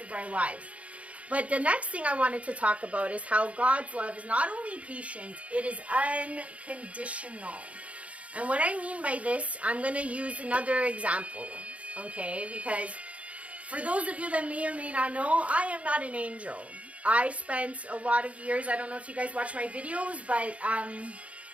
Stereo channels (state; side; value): late; left; 0.064 ms